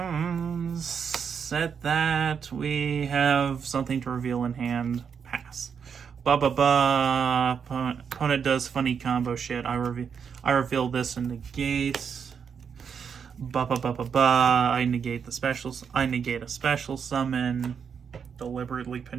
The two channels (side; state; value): left; quieter; 6.9 dB